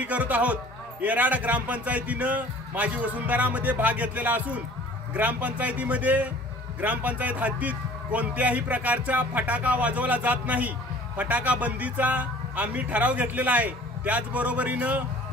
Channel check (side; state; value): both; normal; correlation 0.49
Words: करत आहोत। येराड ग्रामपंचायतीनं माझी वसुंधरामध्ये भाग घेतलेला असून ग्रामपंचायत हद्दीत कोणत्याही प्रकारचा फटाका वाजवला जात नाही। फटाका बंदीचा आम्ही ठराव घेतलेला आहे। त्याचबरोबरीनं